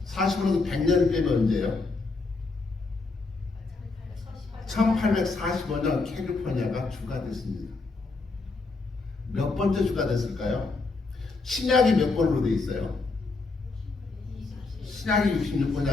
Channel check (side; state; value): right; quieter; 3.8 dB